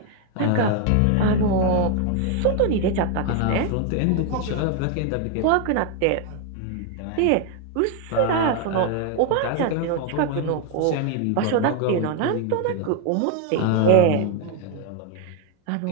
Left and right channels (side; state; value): both; different; correlation 0.01